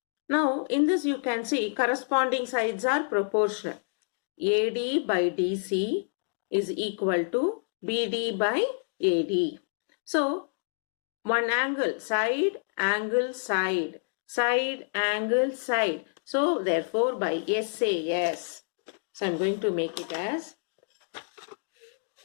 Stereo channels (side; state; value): right; silent; digital silence